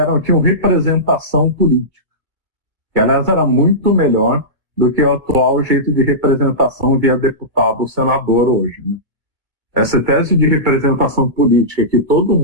tinham representação política, que aliás era muito melhor do que o atual jeito de representação via deputado ou senador hoje, né? Essa tese de representação política que todo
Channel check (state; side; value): late; left; 2.2 ms